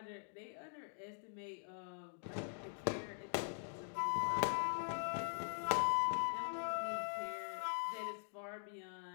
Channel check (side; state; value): right; silent; digital silence